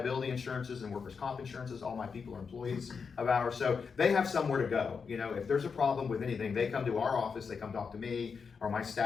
insurances and workers' comp insurances. All my people are employees of ours, so they have somewhere to go. If there's a problem with anything, they come to our office, they come talk to me or my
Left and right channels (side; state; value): right; quieter; 5.7 dB